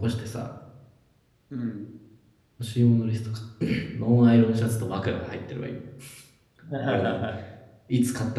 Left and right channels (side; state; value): both; identical; correlation 1.00